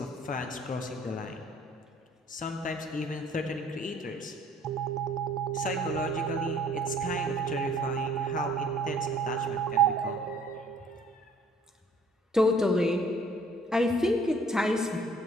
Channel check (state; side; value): normal; both; correlation 0.56